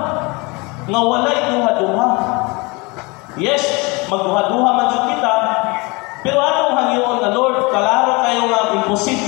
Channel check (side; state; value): right; quieter; 26.5 dB